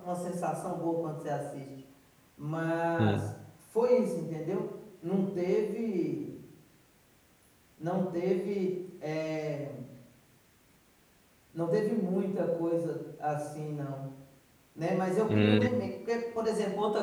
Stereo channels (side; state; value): both; identical; correlation 1.00